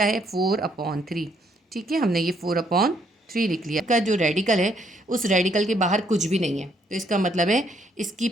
है 4/3, ठीक है, हमने ये 4/3 लिख लिया। इसका जो रेडिकल है उस रेडिकल के बाहर कुछ भी नहीं है, तो इसका मतलब है इसकी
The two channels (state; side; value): normal; both; correlation 0.70